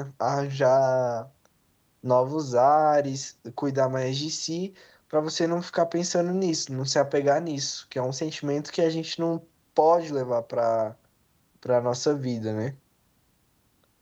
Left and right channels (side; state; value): both; identical; correlation 1.00